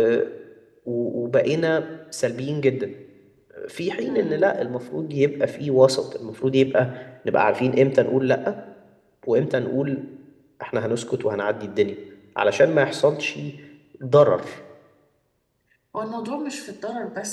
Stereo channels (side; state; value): both; identical; correlation 1.00